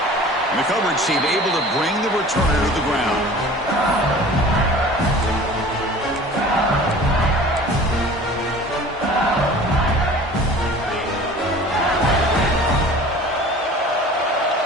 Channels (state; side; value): normal; both; correlation 0.44